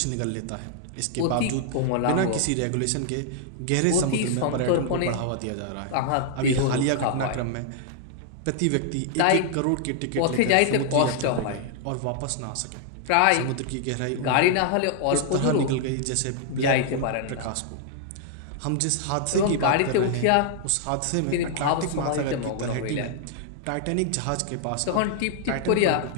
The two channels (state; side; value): different; both; correlation -0.01